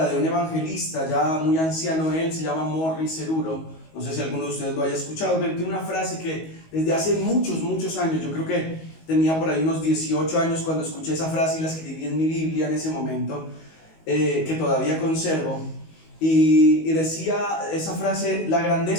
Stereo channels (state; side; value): late; right; 19 ms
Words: de un evangelista ya muy anciano. Él se llama Morris Cerullo. No sé si alguno de ustedes lo haya escuchado, pero tiene una frase que desde hace muchos años, yo creo que tenía por ahí unos 18 años cuando escuché esa frase y la escribí en mi Biblia en ese momento, que todavía conservo. Y decía esa frase: la